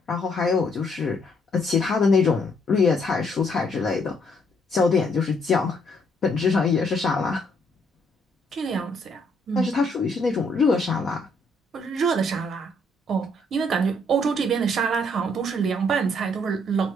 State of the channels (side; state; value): both; normal; correlation 0.69